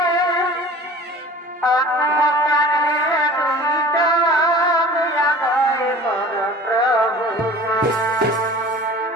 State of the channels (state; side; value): normal; both; correlation 0.42